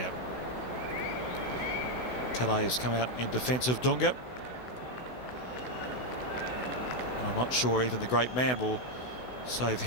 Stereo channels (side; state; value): right; late; 16 ms